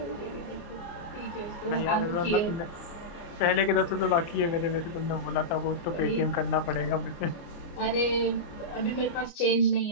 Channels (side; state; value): right; late; 29 ms